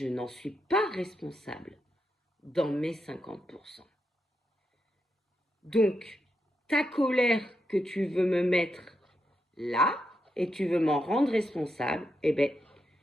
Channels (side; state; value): both; normal; correlation 0.83